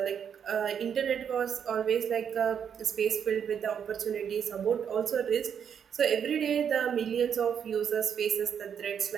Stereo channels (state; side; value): quieter; left; 7.9 dB